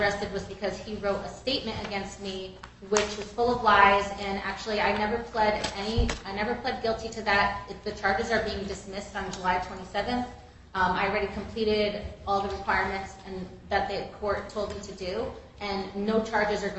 was because he wrote a statement against me, which was full of lies. And actually, I never pled guilty to that. The charges are being dismissed on July 27th. I already completed all the requirements and that the court told me to do, and no charges are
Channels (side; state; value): both; identical; correlation 1.00